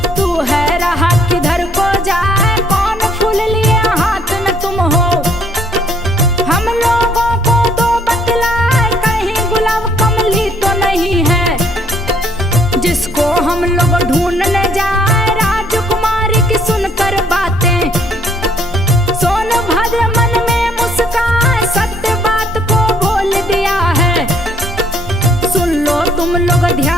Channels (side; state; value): both; normal; correlation 0.64